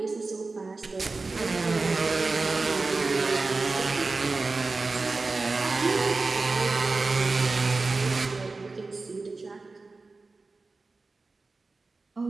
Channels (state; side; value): quieter; left; 3.7 dB